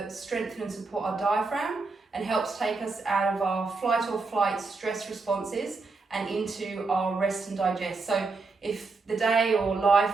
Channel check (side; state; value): left; quieter; 4.0 dB